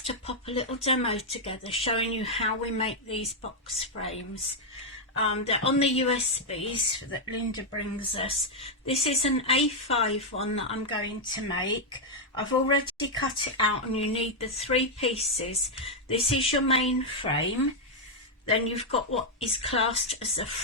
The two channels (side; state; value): both; normal; correlation -0.02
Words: to pop a little demo together showing you how we make these box frames. They're on the USBs that Linda brings us. This is an A5 one that I'm going to make. I've already cut it out and you need the 3 pieces. This is your main frame. Then you've got what is classed as the